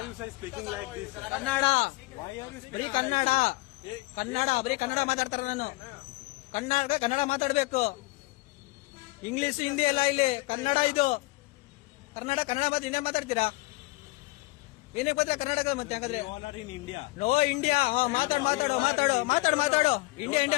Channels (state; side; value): quieter; right; 22.5 dB